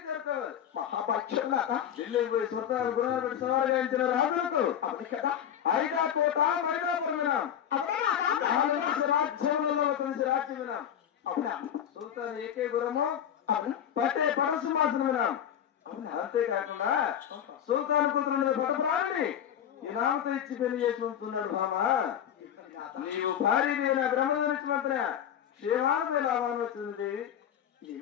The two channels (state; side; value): quieter; right; 9.5 dB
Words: చేరుకోవాలి. మహాపక్షం ఢిల్లీకి పోయి స్వతహాలు గుణాలు పెట్టి సవాలు గాయించిన రాజులకు ఐదా కోట మైదాపురం వినాం. రాజ్యంలో కలిసి రాజ్యం వినాం. సుల్తాన్ ఏకే గురము పట్టే పరశుమాసం వినాం. అంతేకాకుండా సుల్తాన్ కూతురు పట్టప్రాణిని ఈ రామతో ఇచ్చి పెళ్లి చేసి ఉంటున్నాడు. బామా నీవు భారీ నా బ్రహ్మధరించి మాత్రం క్షేమాన్ని లాభాన్ని వచ్చింది.